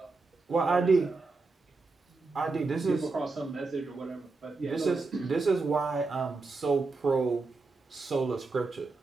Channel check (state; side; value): quieter; left; 3.8 dB